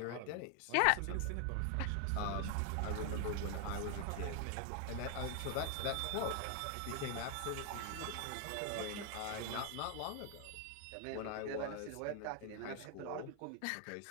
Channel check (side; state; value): both; different; correlation 0.00